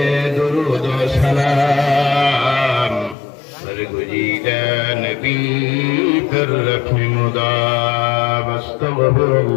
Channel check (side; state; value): right; drops out; at 3.2 s